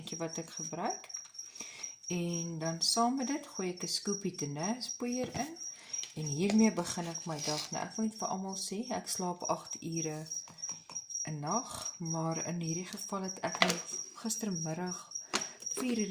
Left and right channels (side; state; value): both; identical; correlation 1.00